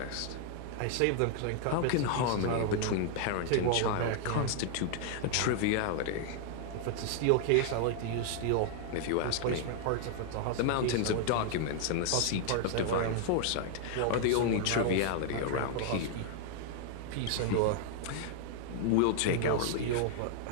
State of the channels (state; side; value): different; both; correlation 0.00